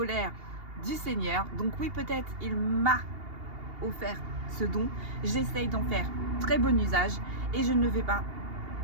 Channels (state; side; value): late; left; 2.8 ms